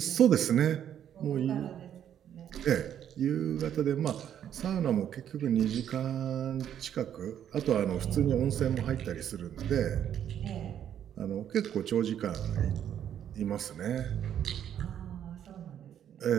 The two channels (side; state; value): left; quieter; 9.8 dB